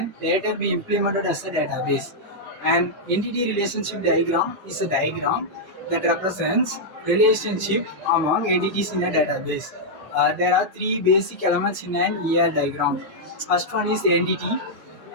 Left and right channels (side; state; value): both; normal; correlation -0.05